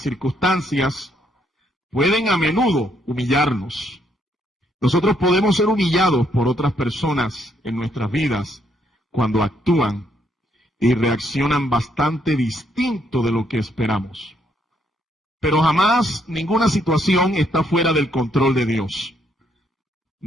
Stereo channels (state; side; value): normal; both; correlation 0.72